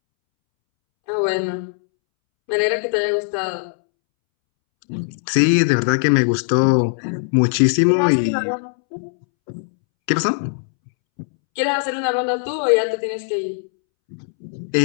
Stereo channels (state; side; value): silent; right; 66 dB below the other